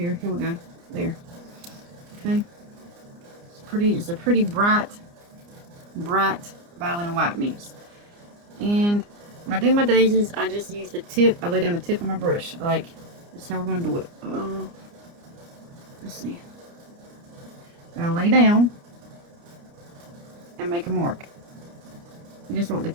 Here we go. There. Okay. It's a pretty bright violet and white mix. And When I do my daisies, I just use the tip. I lay down the tip of my brush. Like, that's how we're going to do it. Let's see. I'll lay down and make a mark. You just want the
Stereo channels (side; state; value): left; late; 29 ms